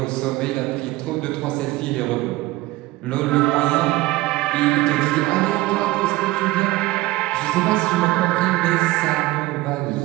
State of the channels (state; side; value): quieter; left; 18.6 dB